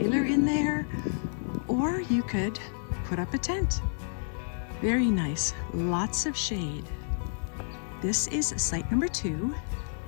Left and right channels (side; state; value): right; silent; digital silence